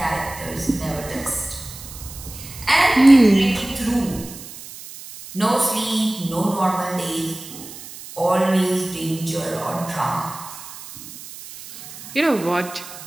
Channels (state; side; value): noise; right; hiss, 14 dB below the sound